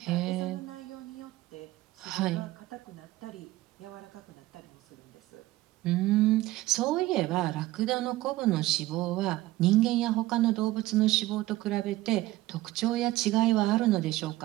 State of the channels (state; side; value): quieter; left; 17.1 dB